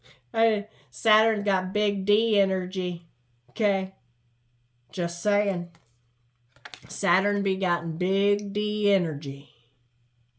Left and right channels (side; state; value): both; identical; correlation 1.00